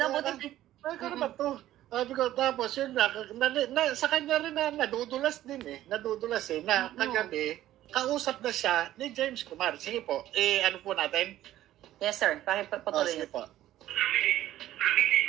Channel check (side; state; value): left; quieter; 13.7 dB